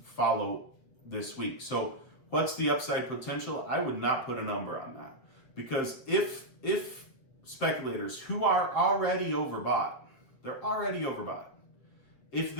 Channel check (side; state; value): right; late; 7.7 ms